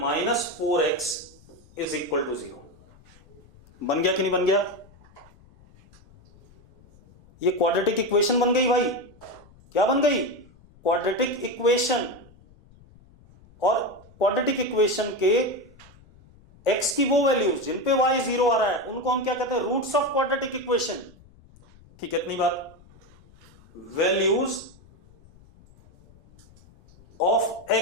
is equal to 0। बन गया कि नहीं बन गया? ये क्वाड्रेटिक इक्वेशन बन गई भाई। क्या बन गई? Quadratic equation. और क्वाड्रेटिक इक्वेशन के x की वो वैल्यूज जिन पे y 0 आ रहा है उनको हम क्या कहते हैं? Roots of quadratic equation. ठीक है, इतनी बात। Values of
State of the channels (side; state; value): left; noise; rumble, 26 dB below the sound